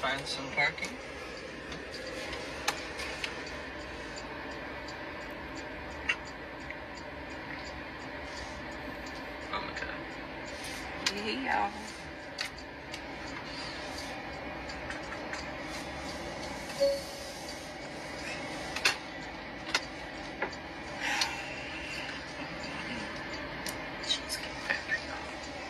find some parking. Oh my god. Hey, y'all.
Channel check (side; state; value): both; identical; correlation 1.00